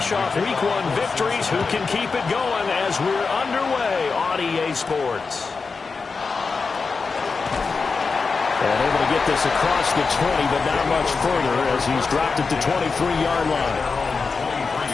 off Week 1 victories. Who can keep it going as we're underway on EA Sports? And able to get this across the 20, but not much further as he's dropped at the 23-yard line.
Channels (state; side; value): quieter; right; 4.7 dB